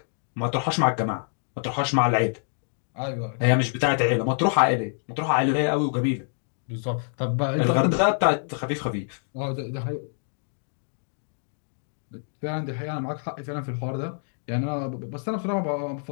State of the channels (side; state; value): right; silent; digital silence